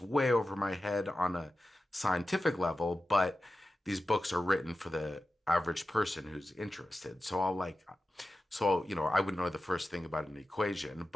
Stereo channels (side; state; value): both; normal; correlation 0.93